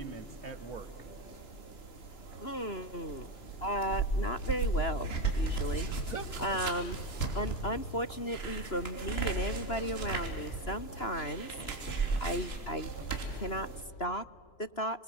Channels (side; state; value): right; late; 2.9 ms